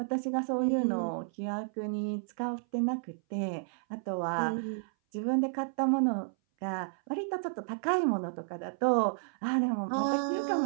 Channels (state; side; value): silent; left; 57 dB below the other